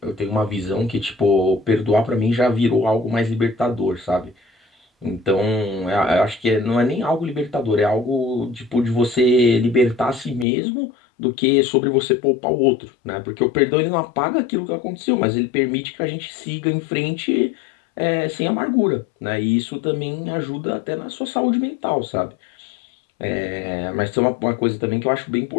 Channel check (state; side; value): drops out; right; at 10.5 s